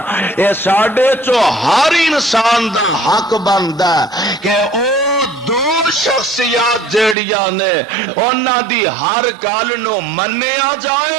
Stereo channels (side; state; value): left; drops out; at 7.2 s